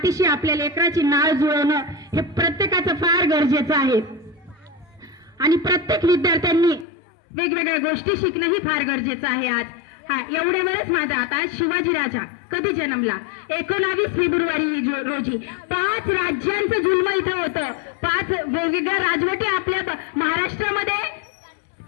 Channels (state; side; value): drops out; right; at 6.9 s